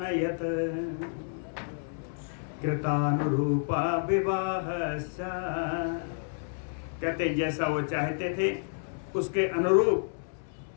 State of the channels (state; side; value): silent; right; 58 dB below the other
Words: कृतानुरूप विवाहश्च, कहते जैसा वो चाहते थे उसके अनुरूप